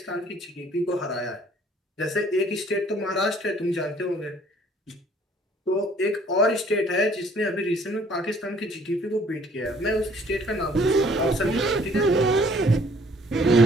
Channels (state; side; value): normal; both; correlation 0.59